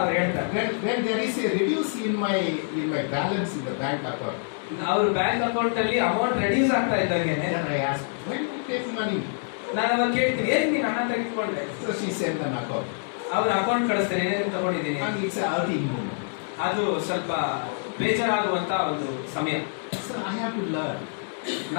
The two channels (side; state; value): right; silent; digital silence